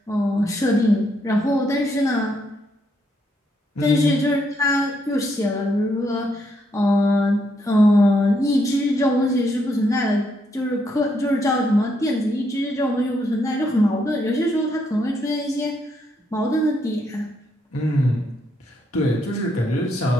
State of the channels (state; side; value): normal; both; correlation 0.76